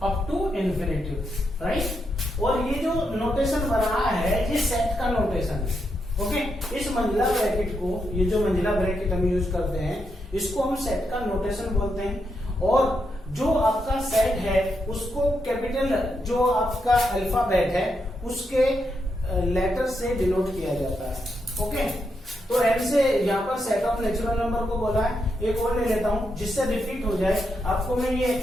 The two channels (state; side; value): normal; both; correlation 0.82